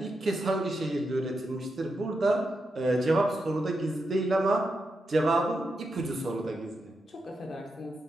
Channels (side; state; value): both; normal; correlation 0.86